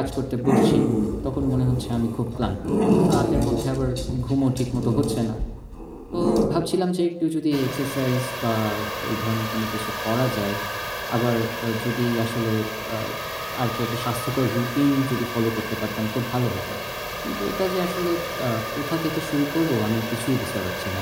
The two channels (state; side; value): identical; both; correlation 1.00